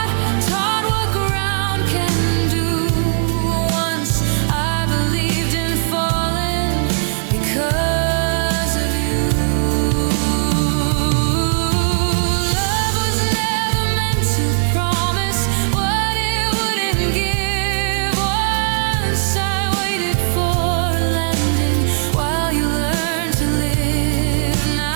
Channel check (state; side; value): silent; left; digital silence